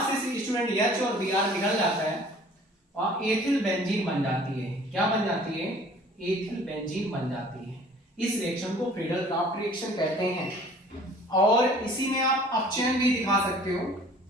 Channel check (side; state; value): both; normal; correlation 0.51